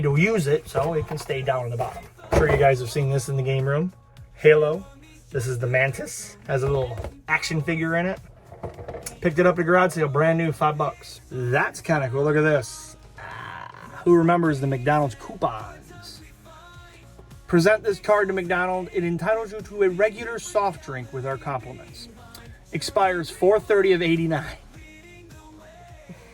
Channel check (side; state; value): both; identical; correlation 1.00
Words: to use it, so it can stay down in the bottom. I'm sure you guys have seen this in the game room. Halo. This is the Mantis. Has a little action figure in it. Picked it up at a garage sale, brand new, $5. That's kind of cool. Look at this. Who remembers the McDonald's coupons? Present this card to McDonald's. It entitles you to a regular soft drink with our compliments. Expires 4/30 of 89.